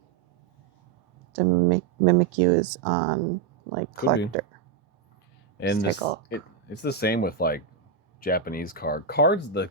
Mimikyu is on like collector. Could be. And it's the same with like Japanese cards. The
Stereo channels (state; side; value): quieter; left; 6.2 dB